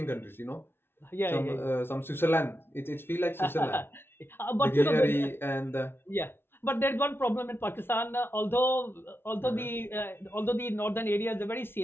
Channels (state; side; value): late; right; 0.11 ms